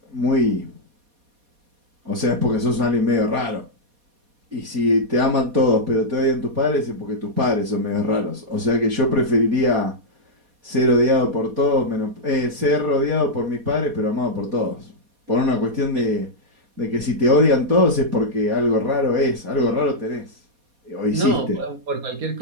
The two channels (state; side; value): late; left; 4.2 ms